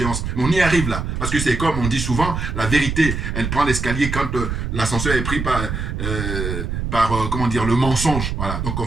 Mais on y arrive là. Parce que c'est comme on dit souvent, la vérité, elle prend l'escalier quand l'ascenseur est pris par comment dire, le mensonge. Voilà. Donc on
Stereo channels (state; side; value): noise; right; rumble, 3 dB below the sound